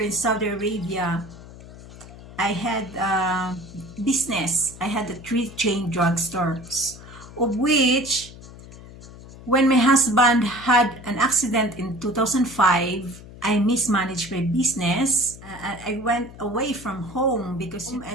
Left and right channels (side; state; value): left; noise; hum, 17 dB below the sound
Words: in Saudi Arabia, I had a business. I had 3 chain drugstores, of which when my husband had an accident in 2005, I mismanaged my business. I went away from home